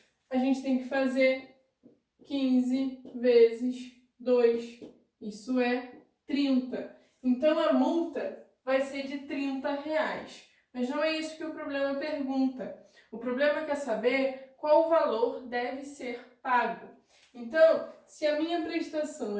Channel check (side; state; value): both; identical; correlation 1.00